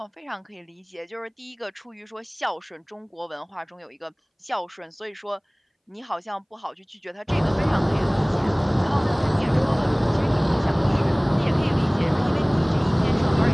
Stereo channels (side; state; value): both; identical; correlation 1.00